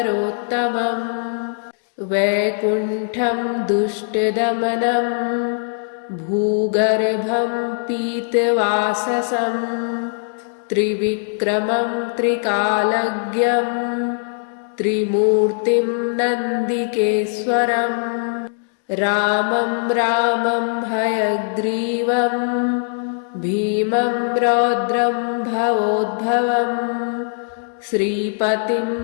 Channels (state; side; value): silent; right; digital silence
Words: वैकुण्ठं दुष्टदमनं भूगर्भं पीतवाससं त्रिविक्रमं त्रिकालज्ञं त्रिमूर्तिं नन्दिकेश्वरं रामं रामं हयग्रीवं भीमं रौद्रं भवोद्भवं श्रीपतिं